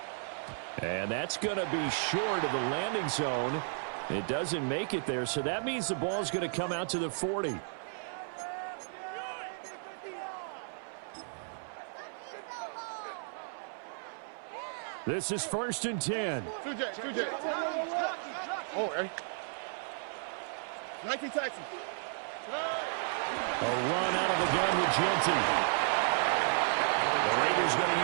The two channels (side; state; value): left; silent; 55 dB below the other